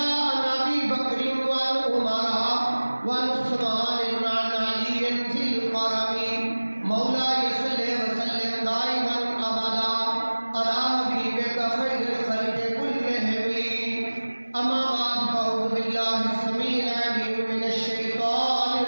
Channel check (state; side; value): inverted; both; correlation -1.00